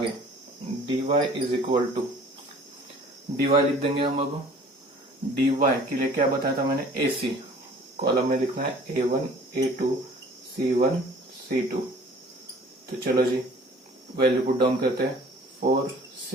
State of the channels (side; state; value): both; normal; correlation 0.50